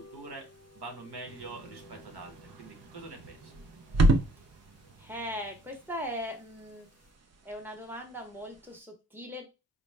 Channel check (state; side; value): normal; both; correlation 0.59